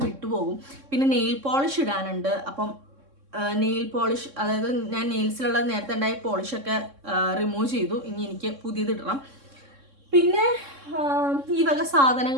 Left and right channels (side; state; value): left; late; 3.6 ms